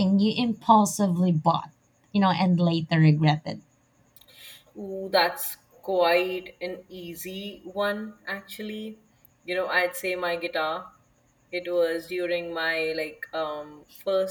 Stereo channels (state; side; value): identical; both; correlation 1.00